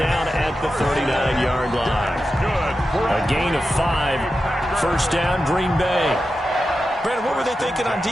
at the 39-yard line. A gain of 5. 1st down, Green Bay. Brandon, what were they thinking on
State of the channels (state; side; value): normal; both; correlation 0.90